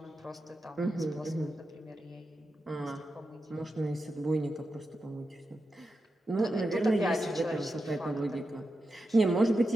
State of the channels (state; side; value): normal; both; correlation 0.89